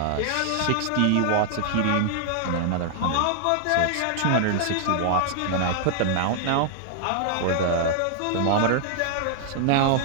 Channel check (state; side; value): different; both; correlation 0.00